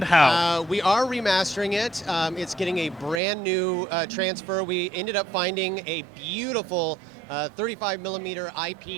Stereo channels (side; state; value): left; drops out; at 3.2 s